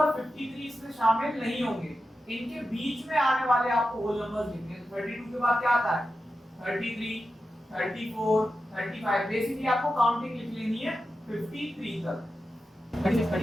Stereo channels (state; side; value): normal; both; correlation 0.91